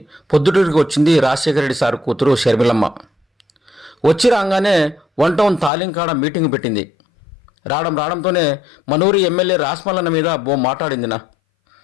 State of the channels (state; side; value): drops out; right; at 5.7 s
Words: పొద్దుటూరికి వచ్చింది రాజశేఖర రెడ్డి సార్ కూతురు షర్మిలమ్మ. వచ్చి రాగానే 1 టౌన్ తాలింకాడ మీటింగ్ పెట్టింది. రావడంతోనే మనూరి ఎమ్మెల్యే రాస్మల్లన్న మీద మాట్లాడిందినా.